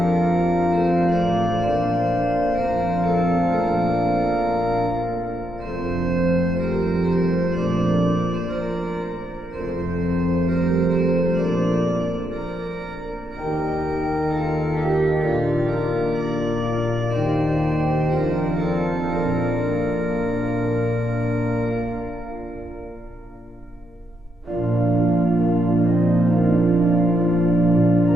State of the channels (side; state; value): both; normal; correlation 0.81